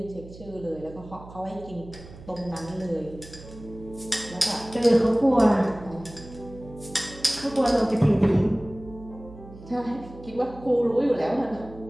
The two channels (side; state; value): right; noise; hum, 17 dB below the sound